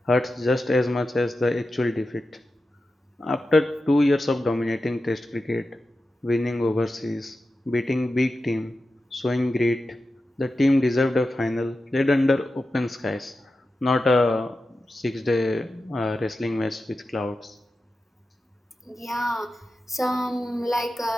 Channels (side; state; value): both; normal; correlation 0.92